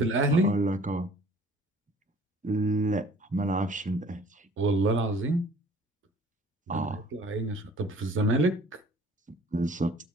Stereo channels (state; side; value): normal; both; correlation 0.52